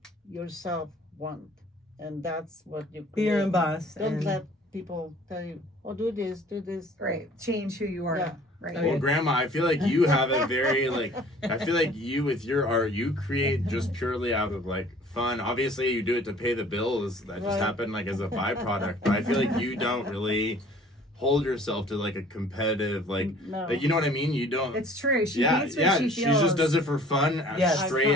yourself want, and that's what you Be your own create. boss. Don't and- let people tell you, "Oh, do this, do this." Right. Change who you are. Yeah. Right. Oh, Well, yeah. Grandma, I feel like you have a very I feel like you with your art, you create just purely out of like fun. Obviously, you do it to pay the bills. That just Right. happened like as a byproduct. But I feel like you don't really hold yourself to like a competitive No. like you know what I mean. You don't. It's true. She yeah, hates what yeah. she She feels. just does it for fun, Yes. straight Fun.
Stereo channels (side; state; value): both; normal; correlation 0.51